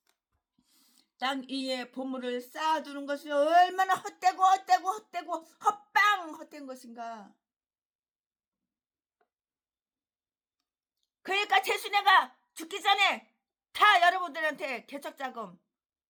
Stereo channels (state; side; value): identical; both; correlation 1.00